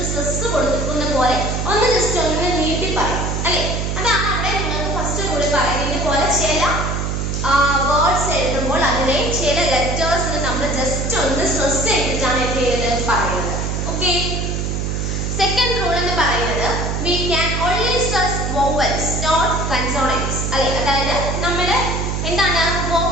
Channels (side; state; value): right; noise; hum, 1 dB below the sound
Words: സ്ട്രെസ് കൊടുക്കുന്ന പോലെ ഒന്ന് ജസ്റ്റ് ഒന്ന് നീട്ടി പറയും അല്ലെ. അതാണ് അവിടെ നിങ്ങൾക്ക് ഫസ്റ്റ് റൂളിൽ പറയുന്നത്. ഇതുപോലെ ചില വേർഡ്സ് എഴുതുമ്പോൾ അതിലെ ചില ലെറ്റേഴ്സിന് നമ്മൾ ജസ്റ്റ് ഒന്ന് സ്ട്രെസ് ചെയ്തിട്ടാണ് എന്ത് ചെയ്യുന്നത് പറയുന്നത്. ഓക്കെ, സെക്കൻഡ് റൂൾ എന്ന് പറയുന്നത് we can only stress vowels not consonants അല്ലെ. അതായത് നമ്മൾ എന്താണ്